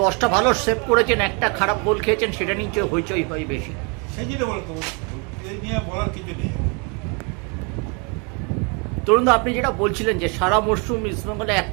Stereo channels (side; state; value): left; quieter; 33.7 dB